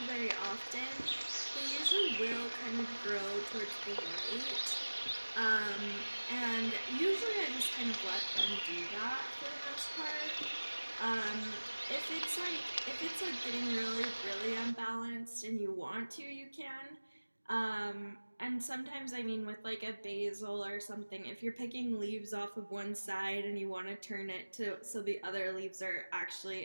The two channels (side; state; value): both; inverted; correlation -1.00